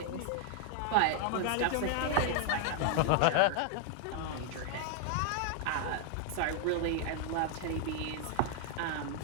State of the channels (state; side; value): different; both; correlation 0.00